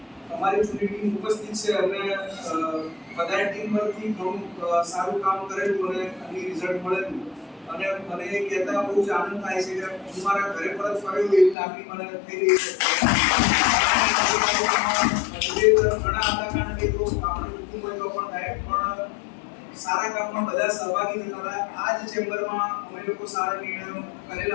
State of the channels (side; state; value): right; drops out; at 11.6 s